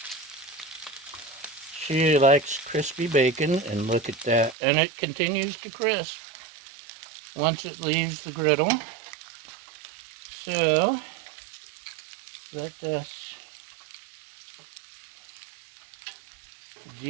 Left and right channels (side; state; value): left; drops out; at 4.5 s